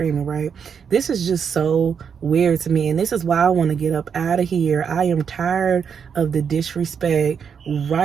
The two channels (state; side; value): quieter; left; 6.9 dB